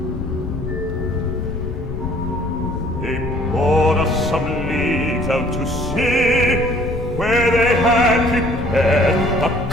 They bore us some leagues out to sea, where they had prepared the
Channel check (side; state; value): left; noise; rumble, 6 dB below the sound